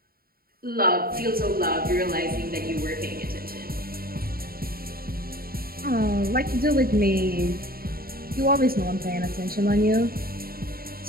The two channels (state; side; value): late; left; 0.43 ms